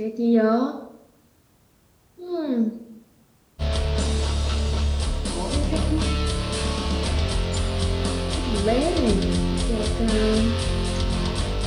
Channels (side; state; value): both; identical; correlation 1.00